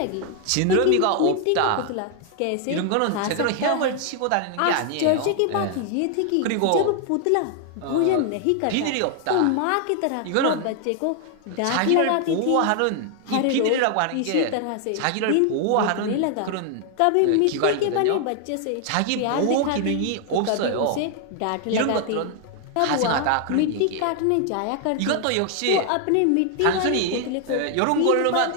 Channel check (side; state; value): both; different; correlation 0.00